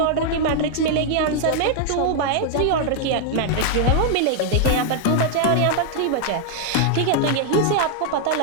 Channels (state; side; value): different; both; correlation 0.00